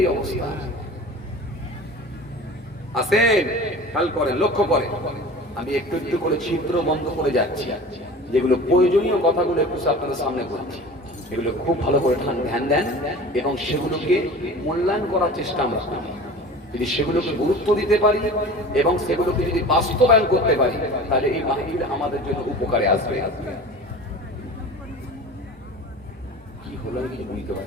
অবস্থা। আসেন, খেয়াল করেন, লক্ষ্য করেন, আমি একটু একটু করে ছিদ্র বন্ধ করে যাচ্ছি, যেগুলো প্রয়োজনীয় কথাগুলো একটু আপনাদের সামনে বলছি, এগুলো খুব ভালো করে ধ্যান দেন এবং সেগুলোকে মূল্যায়ন করার চেষ্টা আমরা করি। যদি সেগুলোকে গুরুত্ব দিতে পারি এবং সেগুলোকে যদি বাস্তবায়ন করতে পারি, তাহলে এই মাহফিল আমাদের জন্য উপকারে আসবে। কি হলো আমি বুঝতে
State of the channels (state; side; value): normal; both; correlation 0.38